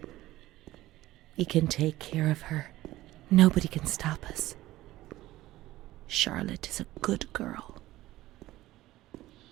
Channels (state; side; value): quieter; left; 16.3 dB